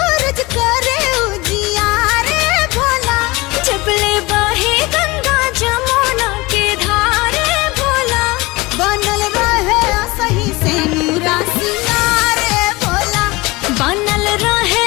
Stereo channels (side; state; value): right; quieter; 22.5 dB